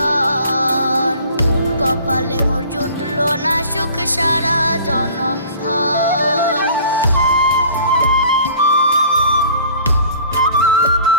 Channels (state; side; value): inverted; both; correlation -0.48